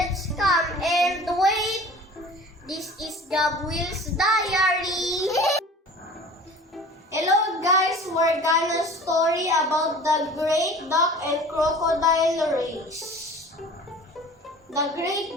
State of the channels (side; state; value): both; normal; correlation 0.43